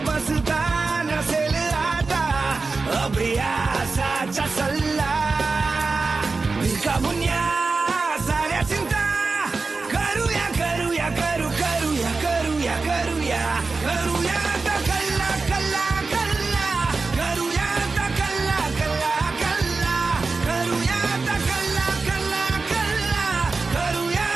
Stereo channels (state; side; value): quieter; left; 4.0 dB